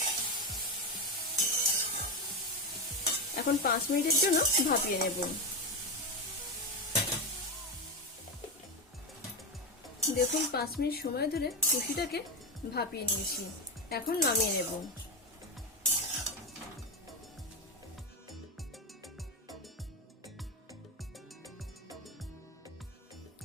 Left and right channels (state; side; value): normal; both; correlation 0.13